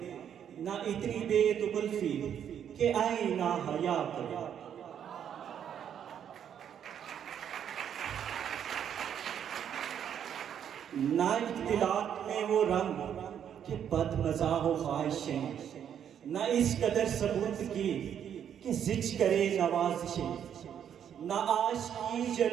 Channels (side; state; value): left; quieter; 9.0 dB